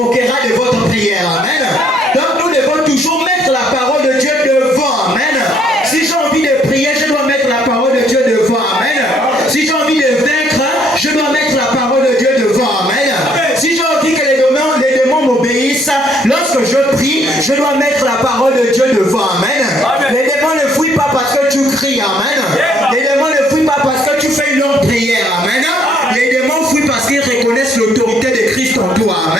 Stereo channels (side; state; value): both; normal; correlation 0.66